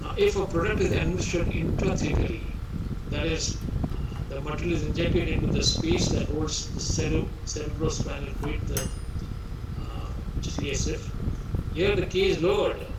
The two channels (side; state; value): both; identical; correlation 1.00